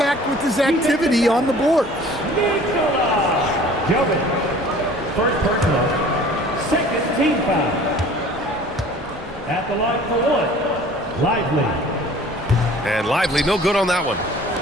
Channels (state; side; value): normal; both; correlation 0.48